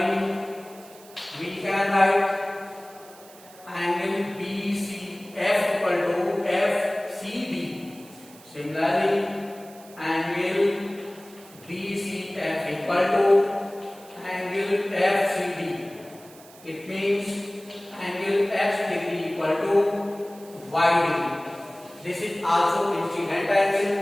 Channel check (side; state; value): right; noise; hiss, 22 dB below the sound